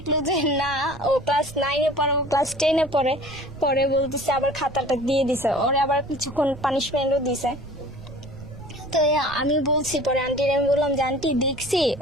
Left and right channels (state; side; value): noise; right; rumble, 16 dB below the sound